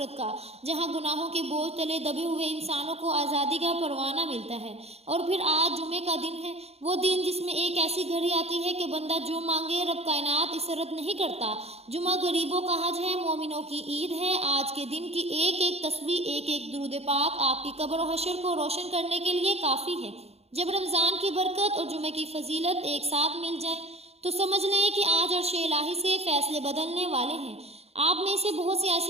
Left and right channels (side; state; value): left; late; 0.30 ms